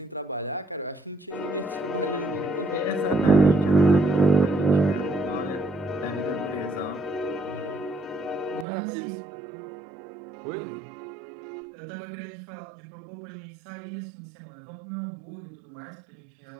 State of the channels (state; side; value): drops out; left; at 8.7 s